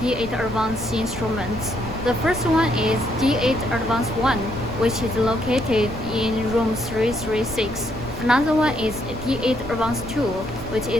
D8 Advanced instruments. The first one is D8 Advanced 1, which is located in room 336. Another one is D8 Advanced 2, which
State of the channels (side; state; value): right; noise; rumble, 13 dB below the sound